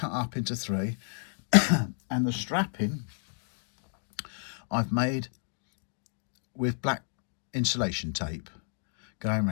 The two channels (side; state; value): right; silent; digital silence